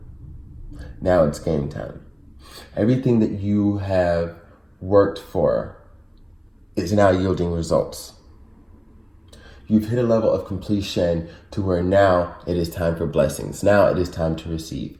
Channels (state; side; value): identical; both; correlation 1.00